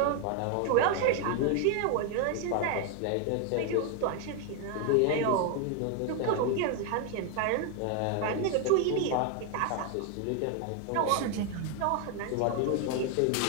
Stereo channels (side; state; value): both; different; correlation 0.01